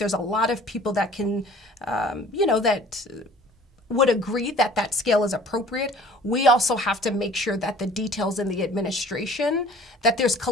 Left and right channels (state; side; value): normal; both; correlation 0.49